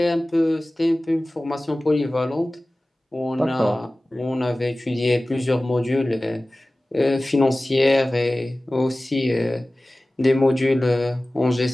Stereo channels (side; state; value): both; normal; correlation 0.97